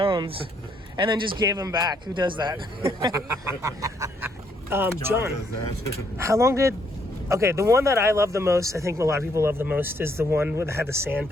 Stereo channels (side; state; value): both; normal; correlation 0.71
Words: and then just gave them back. Who does that? John, how long did... Okay, the one that I love the most, I think a lot of people love the most, is the one that had the sand